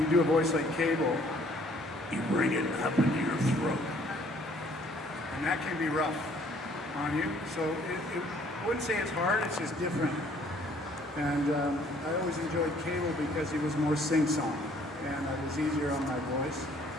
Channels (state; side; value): normal; both; correlation 0.60